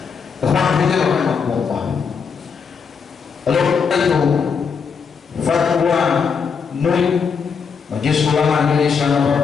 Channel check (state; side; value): quieter; right; 6.0 dB